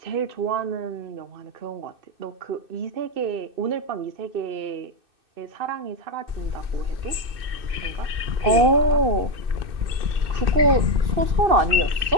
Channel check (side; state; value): left; late; 2.6 ms